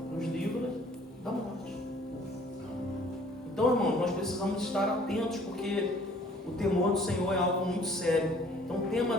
nos livra da morte. Então, irmão, nós precisamos estar atentos, porque o temor do Senhor é algo muito sério. Então, tema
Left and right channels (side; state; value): both; normal; correlation 0.55